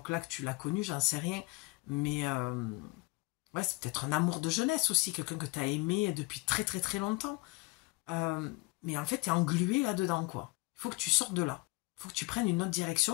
que tu l'as connu, j'en sais rien. Mais ouais, c'est peut-être un amour de jeunesse aussi, quelqu'un que tu as aimé depuis très très très longtemps. Mais en fait, tu es englué là-dedans, quoi. Il faut que tu sortes de là. Il faut que tu prennes une autre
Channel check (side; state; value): right; quieter; 24.2 dB